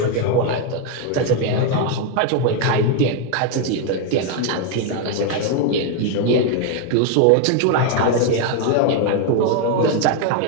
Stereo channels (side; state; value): both; different; correlation 0.01